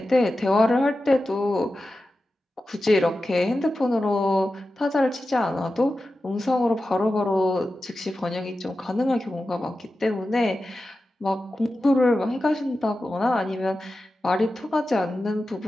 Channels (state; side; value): normal; both; correlation 0.93